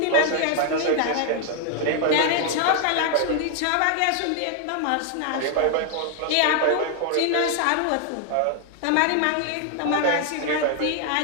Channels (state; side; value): different; both; correlation 0.00